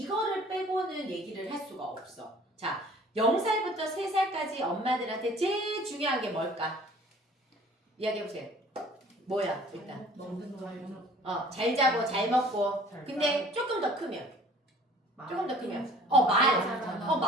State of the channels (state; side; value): normal; both; correlation 0.51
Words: 빼고는 얘기를 할 수가 없어. 자, 0살부터 3살까지 엄마들한테 제일 중요한 게 뭘까? 이야기해보세요. 뭐야 일단? 먹는 거 잘 자고 잘 먹고. 근데 조금 더 크면 조금 더 크면